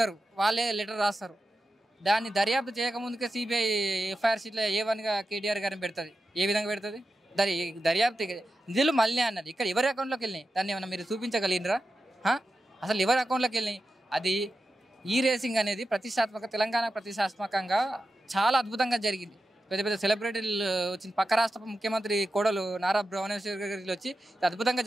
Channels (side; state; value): both; normal; correlation 0.91